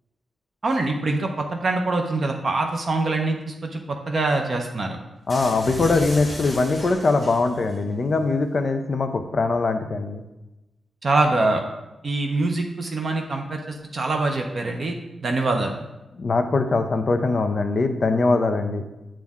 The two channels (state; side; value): normal; both; correlation 0.85